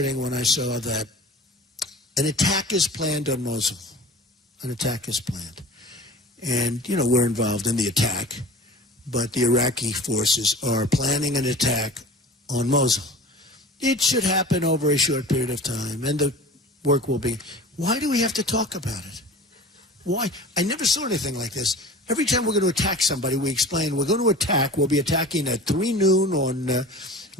when I saw that an attack is planned on Mosul. An attack is planned. And, we're involved in the attack, but the Iraqi forces are planning an attack on Mosul. It should happen over a short period of time, and the work will be. Why do we have to talk about it? Why? I never saw anything like this. Every time we're going to attack somebody, we explain we're going to attack. We'll be attacking at 3 noon on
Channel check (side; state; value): both; normal; correlation 0.40